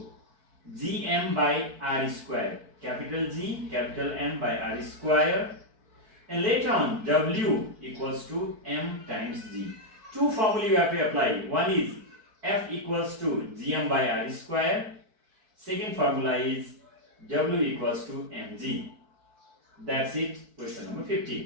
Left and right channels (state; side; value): late; left; 4.6 ms